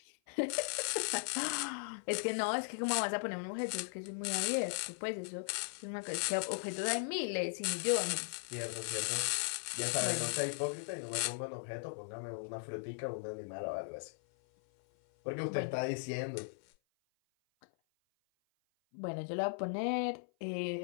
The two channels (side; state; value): right; silent; 53 dB below the other